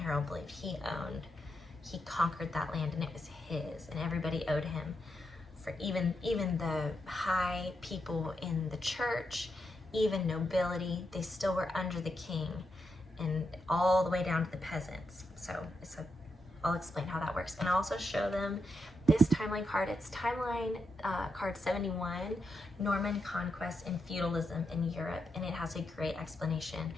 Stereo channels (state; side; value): normal; both; correlation 0.84